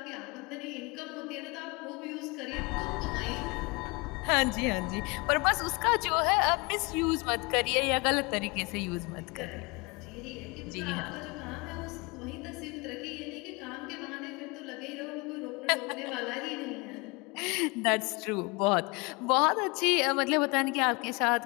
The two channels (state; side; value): quieter; right; 27.6 dB